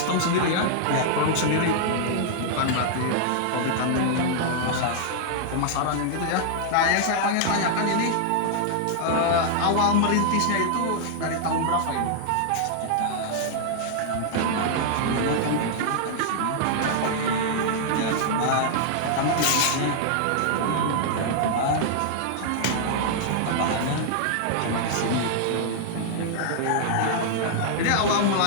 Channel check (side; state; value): both; different; correlation -0.01